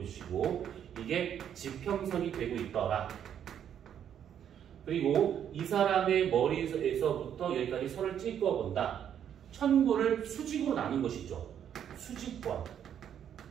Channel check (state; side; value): quieter; left; 9.3 dB